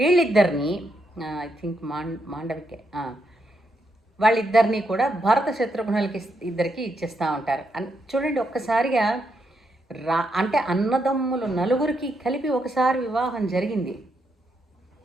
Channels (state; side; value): normal; both; correlation 0.80